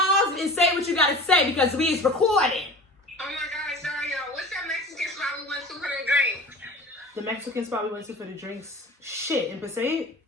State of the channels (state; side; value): normal; both; correlation 0.38